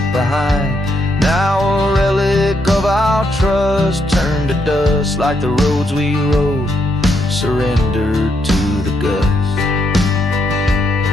behind, now a relic of our trust, turned to dust like the roads we rode, surrendered to the gust.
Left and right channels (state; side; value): normal; both; correlation 0.77